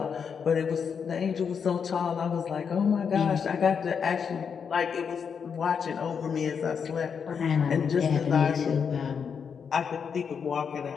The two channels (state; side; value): quieter; right; 6.6 dB